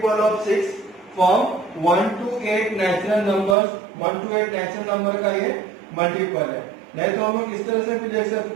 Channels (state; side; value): drops out; left; at 3.6 s